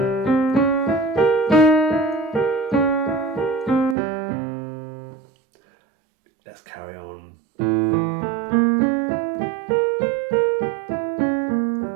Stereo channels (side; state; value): left; drops out; at 4.0 s